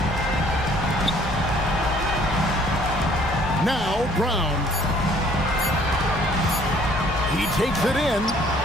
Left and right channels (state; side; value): normal; both; correlation 0.59